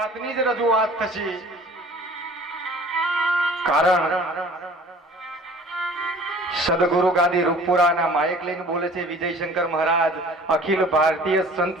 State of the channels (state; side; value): normal; both; correlation 0.48